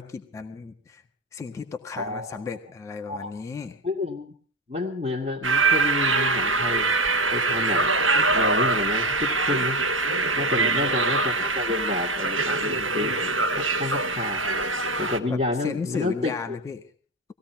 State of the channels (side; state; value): both; normal; correlation 0.15